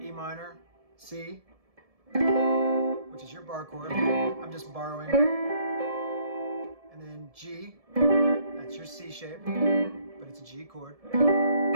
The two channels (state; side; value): late; left; 1.7 ms